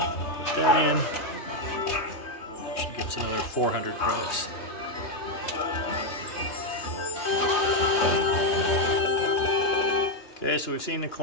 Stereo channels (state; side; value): late; right; 3.2 ms